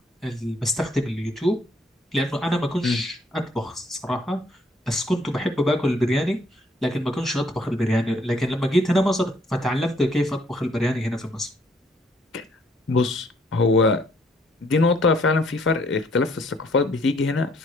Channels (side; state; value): both; normal; correlation 0.67